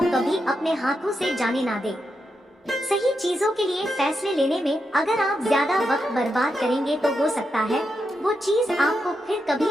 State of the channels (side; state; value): both; normal; correlation 0.85